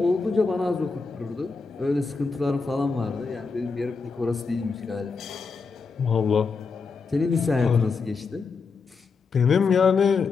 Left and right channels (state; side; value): quieter; right; 4.7 dB